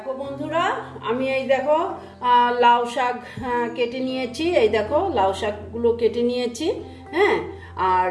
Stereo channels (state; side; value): identical; both; correlation 1.00